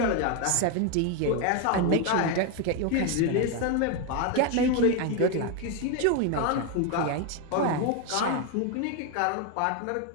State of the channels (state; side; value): different; both; correlation 0.01